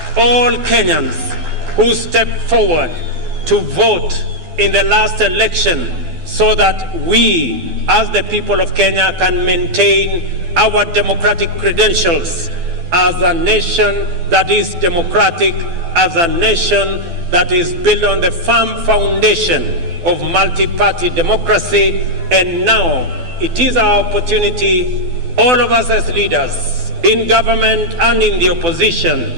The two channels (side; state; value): left; late; 12 ms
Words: all Kenyans who stepped forward to vote in the last election so that we, as the people of Kenya, can maintain our democratic credentials as a nation that is democratic, as a nation that is built on the firm foundation of multi-party democracy. And now it is our opportunity, all of us as leaders in government and in the